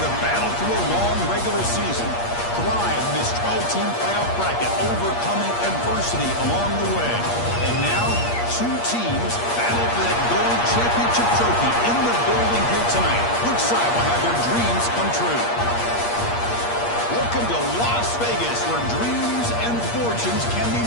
have battled through a long regular season, thrived in this 12-team playoff bracket, overcoming adversity along the way. And now, two teams battle for that gold championship trophy in the building here tonight. Which side will have their dreams come true? Welcome to Las Vegas, where dreams and fortunes can be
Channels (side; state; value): right; late; 8.5 ms